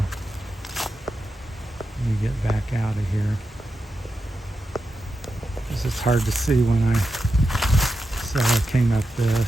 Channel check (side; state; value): both; normal; correlation 0.89